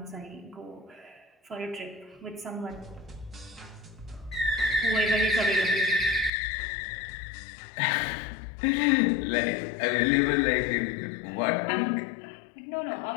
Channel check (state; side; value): drops out; right; at 6.3 s